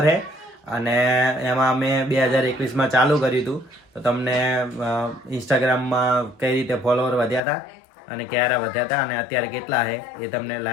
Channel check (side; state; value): right; drops out; at 7.4 s